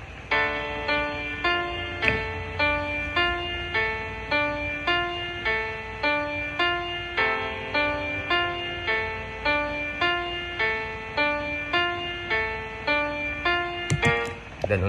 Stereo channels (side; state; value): both; identical; correlation 1.00